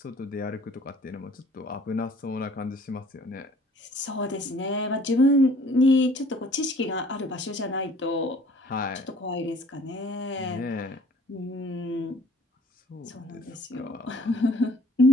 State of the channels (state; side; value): normal; both; correlation 0.54